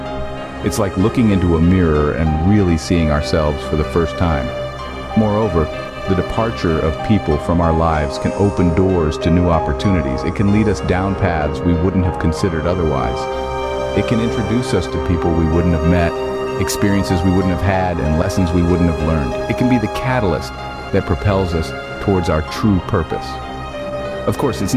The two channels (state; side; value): identical; both; correlation 1.00